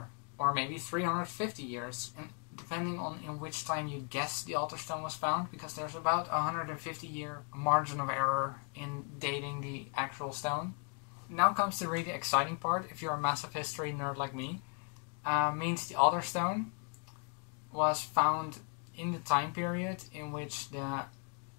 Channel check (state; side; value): quieter; right; 39.5 dB